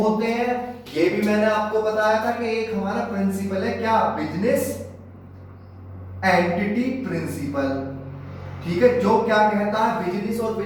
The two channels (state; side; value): identical; both; correlation 1.00